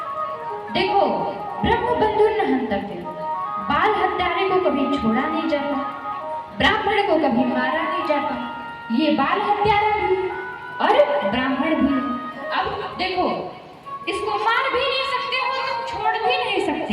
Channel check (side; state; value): both; identical; correlation 1.00